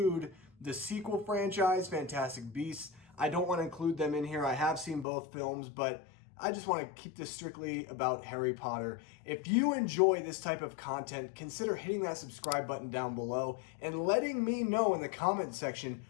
the sequel franchise, Fantastic Beasts. I don't want to include them in here. I have seen both films, but I just want to keep this strictly about Harry Potter. If you enjoy this type of content, consider hitting that subscribe button down below and letting me know in the comment section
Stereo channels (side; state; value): right; drops out; at 5.1 s